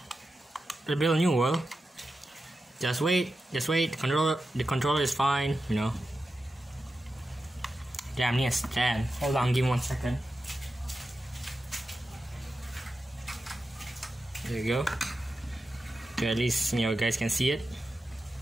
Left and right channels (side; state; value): both; normal; correlation 0.91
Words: a new world. Just wait. The controller is fine, you know. Damn, I need a stand. Hold on, give me 1 second. There you go. Okay, at least, you know, guys can see it.